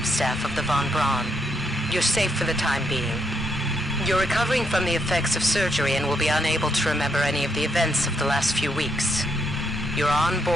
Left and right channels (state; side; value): normal; both; correlation 0.77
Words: staff of the Von Braun. You're safe for the time being. You're recovering from the effects of surgery and will be unable to remember any of the events of the last few weeks. You're on